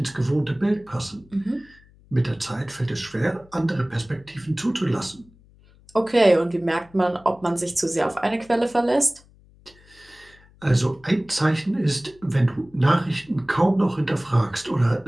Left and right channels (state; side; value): noise; left; hum, 27 dB below the sound